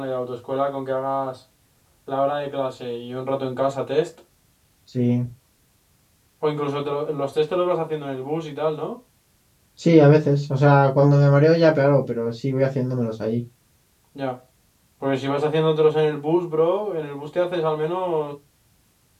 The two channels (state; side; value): identical; both; correlation 1.00